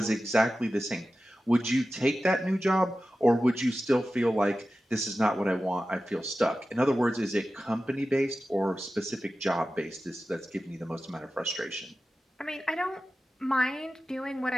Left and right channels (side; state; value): both; normal; correlation 0.94